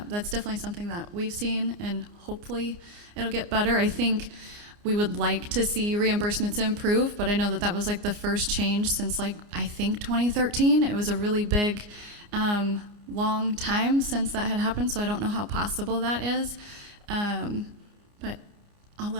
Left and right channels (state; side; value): late; left; 30 ms